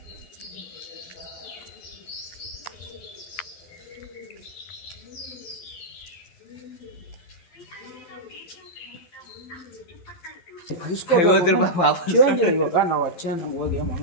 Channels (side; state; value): right; late; 12 ms